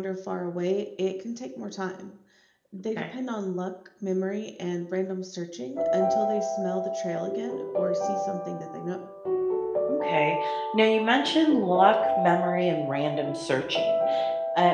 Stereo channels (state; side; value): identical; both; correlation 1.00